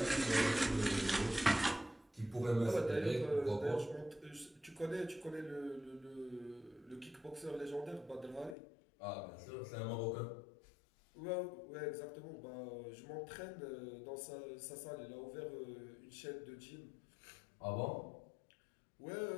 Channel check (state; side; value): drops out; right; at 8.6 s